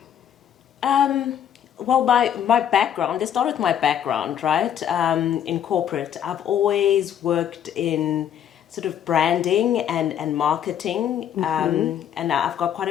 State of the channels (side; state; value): right; quieter; 9.6 dB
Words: well, my background, let's start with my background, right? In corporate, I've always worked in sort of branding and marketing, and I've got quite